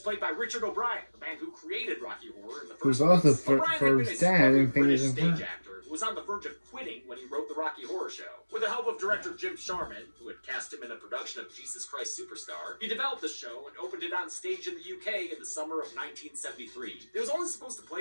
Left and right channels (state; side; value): inverted; both; correlation -1.00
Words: played by Richard O'Brien, the man who created Rocky Horror in the Who's first also place. O'Brien had been Fern's a dad smothered in Faye's British and stage Fern. actor who was on the verge of quitting when he wrote the Rocky Horror Show. With the help of director Jim Sharman, who had cast him in a production of Jesus Christ Superstar, he developed the show and opened it on stage in the UK in the summer of 1973. It was only supposed to